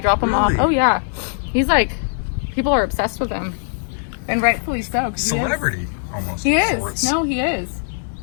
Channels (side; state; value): right; silent; digital silence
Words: drop him Really? off. Oh, yeah. He's like, people are obsessed with him. And rightfully so. 'Cause Celebrity, almost. He of is. sorts. No, he is.